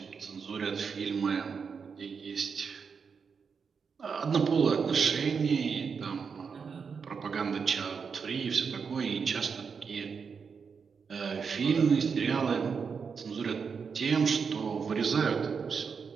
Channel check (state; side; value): quieter; left; 5.9 dB